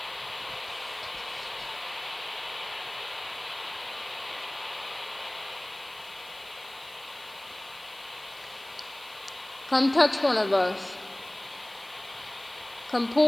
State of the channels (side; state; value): left; noise; hiss, 22 dB below the sound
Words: Come touch one of us. Come